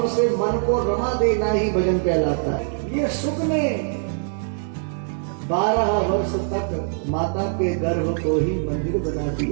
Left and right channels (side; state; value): left; silent; 60 dB below the other